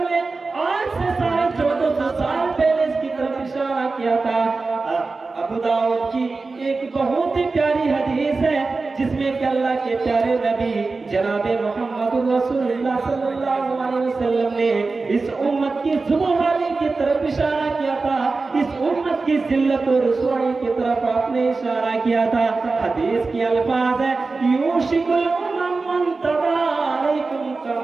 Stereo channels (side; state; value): left; quieter; 3.9 dB